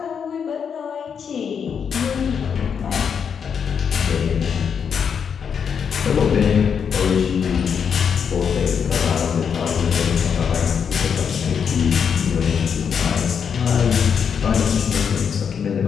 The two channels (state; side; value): quieter; right; 7.0 dB